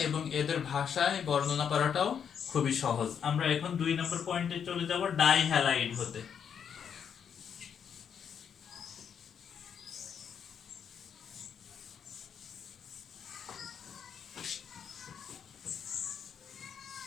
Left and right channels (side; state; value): right; quieter; 7.7 dB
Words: এবং এদের ভাষায় বর্ণনা করাটাও খুবই সহজ। আমরা এখন 2 নম্বর পয়েন্টে চলে যাব, ডাইহ্যালাইড হতে।